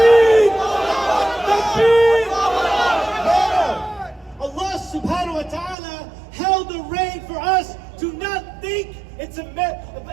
Takbir! Allah subhanahu wa ta'ala held the rein for us. Do not think it's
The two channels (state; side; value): drops out; left; at 5.8 s